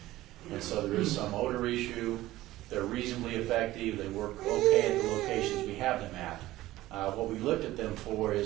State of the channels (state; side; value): quieter; left; 16.3 dB